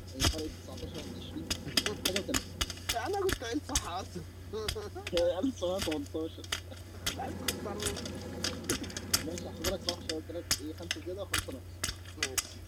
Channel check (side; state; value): both; identical; correlation 1.00